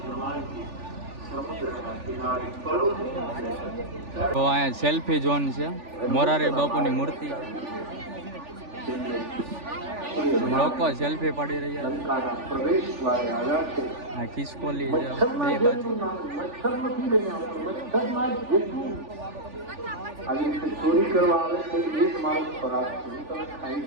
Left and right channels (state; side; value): late; left; 3.4 ms